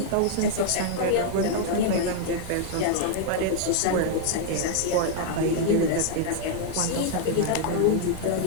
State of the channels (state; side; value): different; both; correlation 0.00